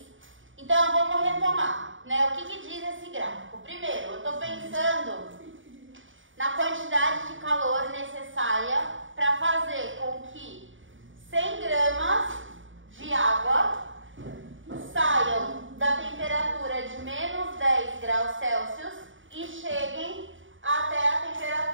Então vamos retomar, né? O que diz esse gráfico? Primeiro, eu estou pensando na quantidade de calor necessária para fazer com que 100 gramas de água saiam da temperatura de menos 10 graus Celsius e cheguem até a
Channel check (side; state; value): left; late; 0.57 ms